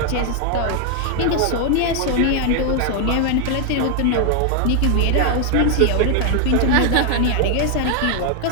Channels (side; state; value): both; different; correlation 0.00